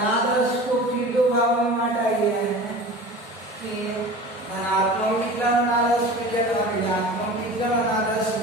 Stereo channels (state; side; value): normal; both; correlation 0.37